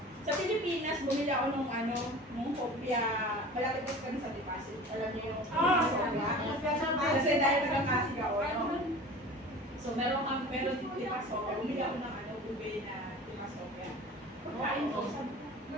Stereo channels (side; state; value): both; normal; correlation 0.39